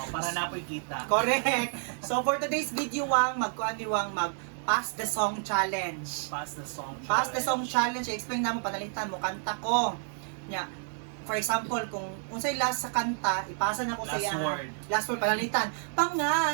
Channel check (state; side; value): silent; left; 58 dB below the other